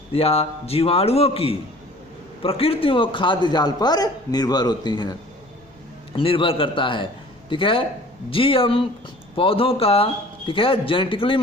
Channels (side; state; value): both; normal; correlation 0.48